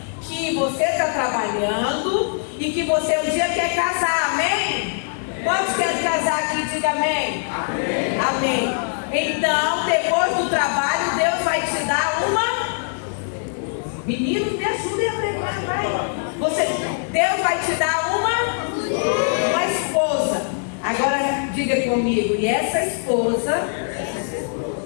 que você está trabalhando e que você um dia quer casar, amém? Quantos querem casar aqui? Diga amém. Amém. Amém. Então, depois do trabalho, Deus vai te dar uma... Meninos, me ajudem a pregar, vai. Deus vai te dar uma esposa. Agora, diga comigo, e essa esposa,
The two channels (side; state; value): right; silent; 56 dB below the other